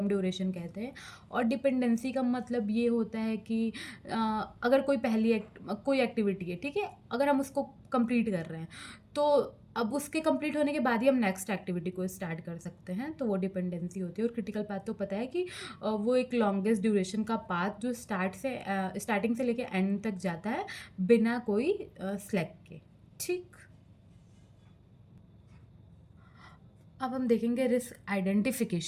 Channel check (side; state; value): both; identical; correlation 1.00